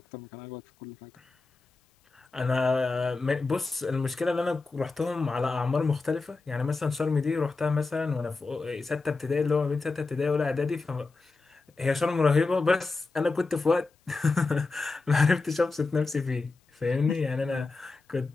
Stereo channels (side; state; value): right; quieter; 3.8 dB